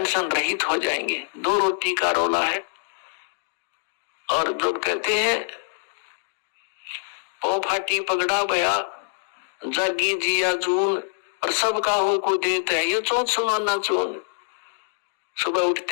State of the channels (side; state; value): right; silent; digital silence